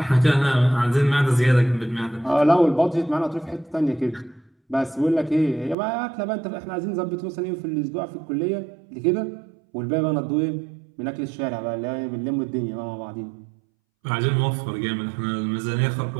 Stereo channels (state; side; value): drops out; left; at 5.8 s